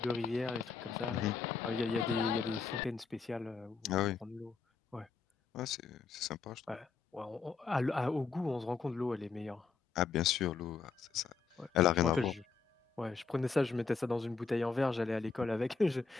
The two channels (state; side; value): quieter; right; 5.1 dB